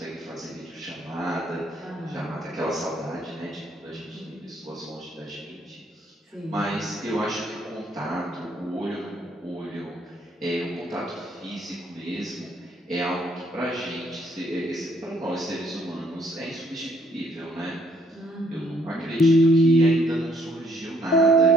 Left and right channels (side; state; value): both; normal; correlation 0.66